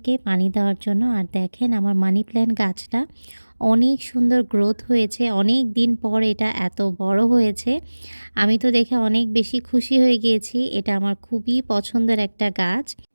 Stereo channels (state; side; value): inverted; both; correlation -1.00